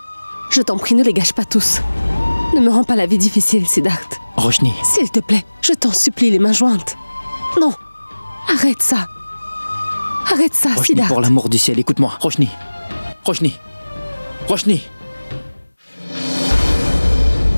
Je t'en prie, ne les gâche pas tous. Ne me rends pas la vie difficile, Siddharth. Roshni. S'il te plaît, je t'en supplie, les mains jointes. Non, arrête ça. Arrête ça, Roshni, Siddharth. pour l'amour du ciel, écoute-moi. Roshni.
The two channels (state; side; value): inverted; both; correlation -1.00